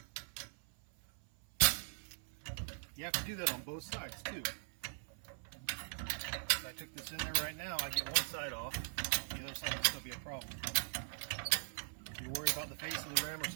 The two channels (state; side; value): silent; left; 51 dB below the other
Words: You have to do that on both sides too. If I took this in there right now, I get one side off. The other side would still be a problem. If you're worried about the face of the rim or